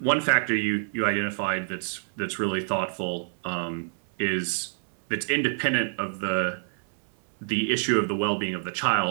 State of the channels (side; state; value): left; silent; 60 dB below the other